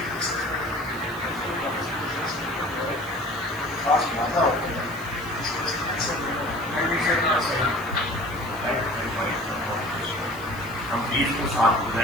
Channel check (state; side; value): noise; left; hiss, 20 dB below the sound